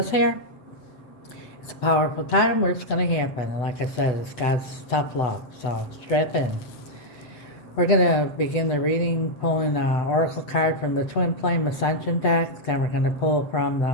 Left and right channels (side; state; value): right; late; 8.0 ms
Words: here, it's a powerful time where it's going to happen. And like I said, it's God's tough love. So strap in. We're going to begin the reading pulling an oracle card from the Twin Flame Ascension deck. Then we're going to pull from